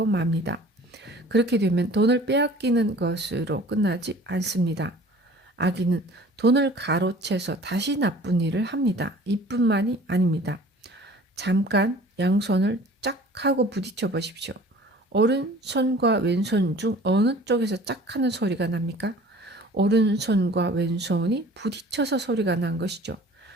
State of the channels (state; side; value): normal; both; correlation 0.47